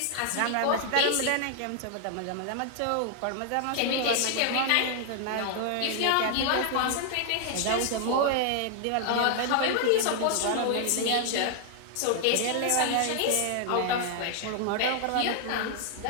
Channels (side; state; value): both; different; correlation 0.00